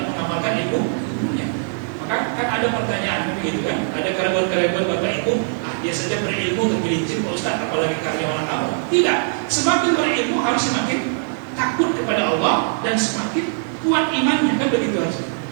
mengamalkan ilmunya. Maka kan ada pertanyaan begitu kan, ada karyawan-karyawan Bapak Ibu, dia saja berilmu tergelincir Pak Ustaz, apalagi karyawan kamu. Tidak, semakin berilmu harus semakin takut kepada Allah dan semakin kuat imannya, kan begitu harusnya.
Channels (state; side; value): silent; left; digital silence